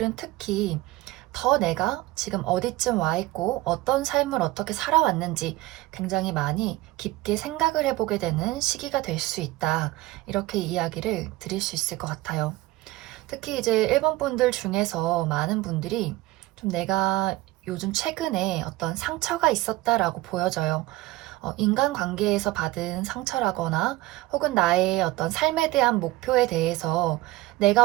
특히 더 내가 지금 어디쯤 와 있고 어떤 삶을 어떻게 살아왔는지 굉장히 많이 깊게 생각을 해보게 되는 시기가 될 수 있다. 이렇게 이야기를 드릴 수 있을 것 같아요. 특히 이제 1번 분들 중에서 많은 분들이 좀 내가 요즘 최근에 어떤 상처가 있었다라고 보여져요. 인간관계에서 받은 상처라거나 혹은 나의 어떤 삶에 대한 목표에 대해서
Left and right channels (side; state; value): left; quieter; 18.5 dB